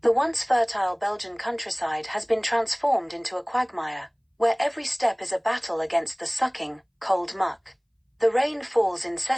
The once fertile Belgian countryside has been transformed into a quagmire, where every step is a battle against the sucking, cold muck. The rain falls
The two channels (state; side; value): identical; both; correlation 1.00